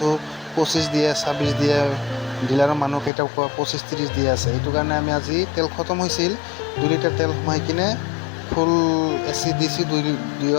25 দিয়ে, 26 দিয়ে। ডিলাৰৰ মানুহকেইটাও কোৱা 25-30 দি আছে। এইটো কাৰণে আমি আজি তেল খতম হৈছিল, 2 লিটাৰ তেল সোমাই কিনে ফুল AC দিছোঁ,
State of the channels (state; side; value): drops out; right; at 3.1 s